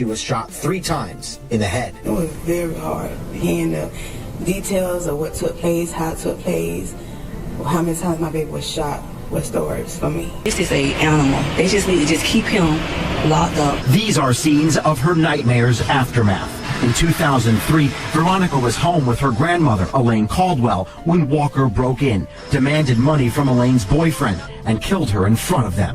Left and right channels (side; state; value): both; identical; correlation 1.00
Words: was shot 3 times in the head. It was very hard hearing the details of what took place, how it took place, how many times my baby was shot. What's the words for me? This is an animal. They just need to just keep him locked up. These are scenes of her nightmare's aftermath. In 2003, Veronica was home with her grandmother, Elaine Caldwell, when Walker broke in, demanded money from Elaine's boyfriend, and killed her in front of